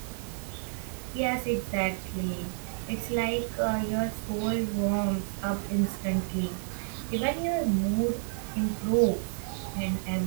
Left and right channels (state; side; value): silent; left; 58 dB below the other